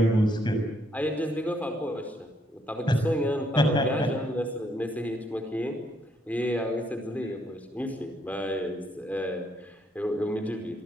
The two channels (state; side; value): normal; both; correlation 0.72